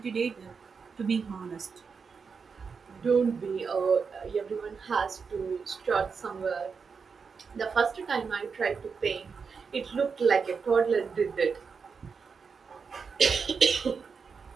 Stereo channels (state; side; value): quieter; left; 5.5 dB